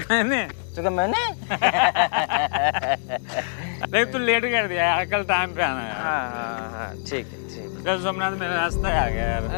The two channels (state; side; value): silent; right; digital silence